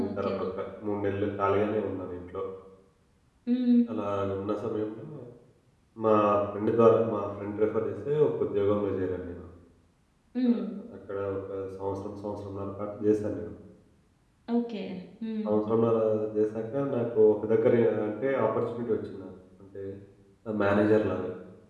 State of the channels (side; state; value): both; identical; correlation 1.00